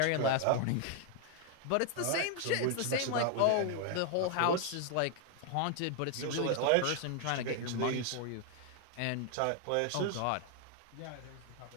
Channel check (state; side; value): different; both; correlation 0.00